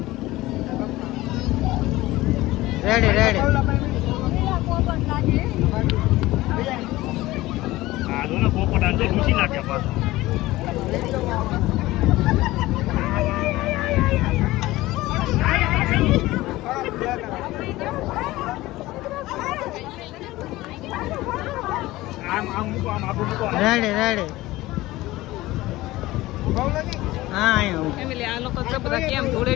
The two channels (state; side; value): quieter; right; 18.1 dB